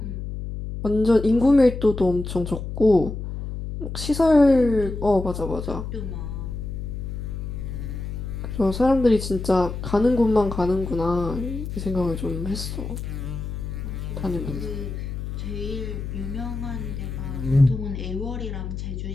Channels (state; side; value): noise; left; hum, 6 dB below the sound